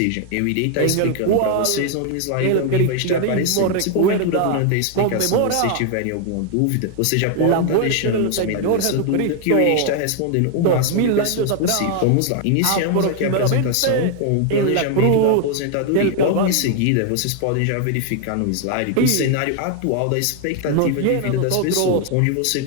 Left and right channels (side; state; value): both; different; correlation 0.00